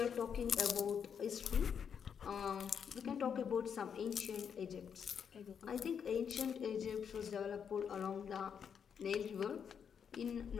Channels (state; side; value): quieter; right; 7.4 dB